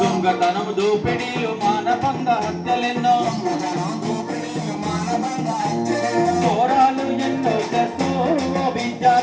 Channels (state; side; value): identical; both; correlation 1.00